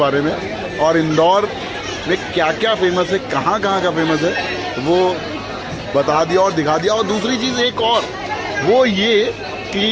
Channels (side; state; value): both; identical; correlation 1.00